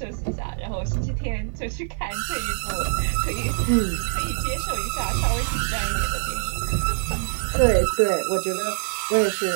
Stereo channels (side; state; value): left; silent; digital silence